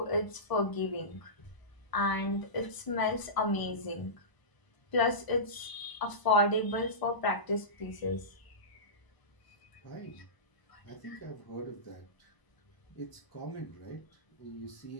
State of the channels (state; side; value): late; right; 1.0 ms